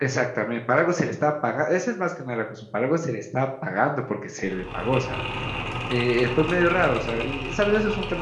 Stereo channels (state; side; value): identical; both; correlation 1.00